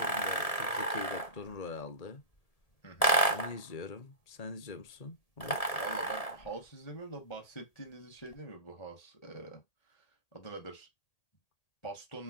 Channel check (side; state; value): right; late; 1.7 ms